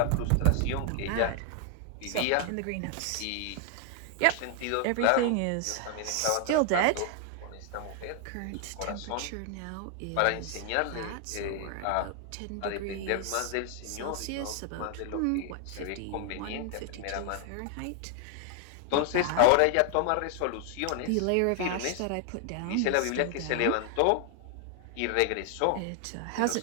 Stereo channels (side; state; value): both; different; correlation 0.00